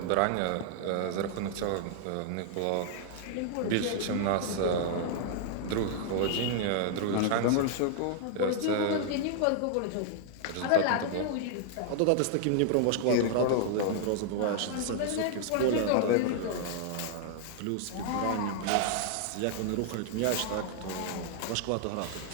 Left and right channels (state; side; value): different; both; correlation 0.00